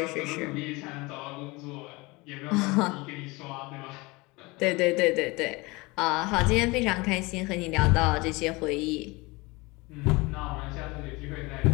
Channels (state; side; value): quieter; right; 24.3 dB